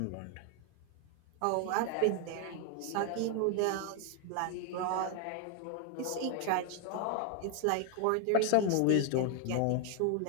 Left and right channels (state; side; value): different; both; correlation 0.00